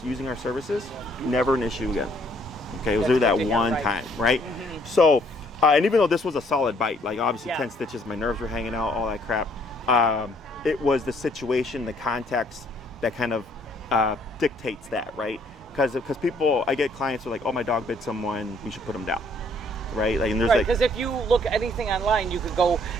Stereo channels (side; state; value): both; normal; correlation 0.64